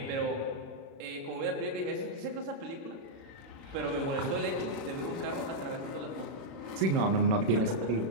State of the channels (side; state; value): left; late; 36 ms